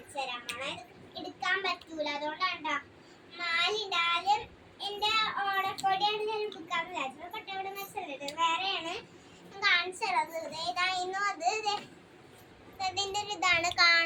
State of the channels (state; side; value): identical; both; correlation 1.00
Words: തരാം. എടുക്കാൻ പറ്റൂല, അതുകൊണ്ടാണ്ടാ മാലിടാലും എന്റെ ഓണക്കോടിയാണ് ഞാൻ എടുക്കാൻ വിചാരിച്ചത്. കൊട്ടയോട് മെസ്സല്ലേ വേറെയാണ് ഞാൻ കാണിച്ചു തരാം. ഏതായിരുന്നു അത്? അതിന്റെ ഒരു ഇതാണ്